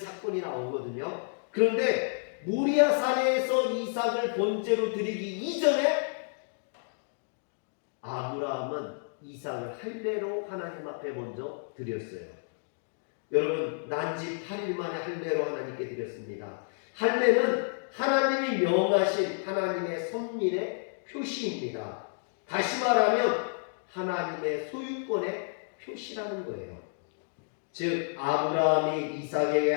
나오거든요. 그런데 모리아산에서 이삭을 번제로 드리기 이전에 아브라함은 이삭을 할례로 하나님 앞에 먼저 드렸어요. 여러분, 난지 8일 만에 할례로 하나님께 드렸습니다. 할례는 하나님이 명하신 하나님의 선민의 표시입니다. 다시 말하면 하나님의 소유권의 표시라는 거예요. 즉 아브라함이 이삭에게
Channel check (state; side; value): silent; right; digital silence